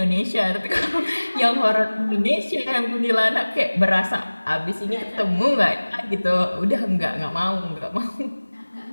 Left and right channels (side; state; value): both; inverted; correlation -1.00